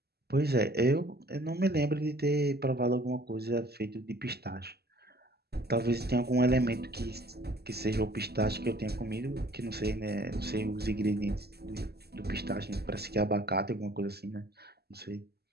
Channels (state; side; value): late; left; 0.46 ms